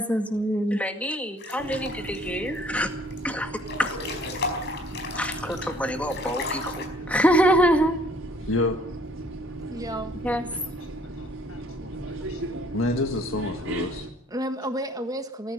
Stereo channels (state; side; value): normal; both; correlation 0.58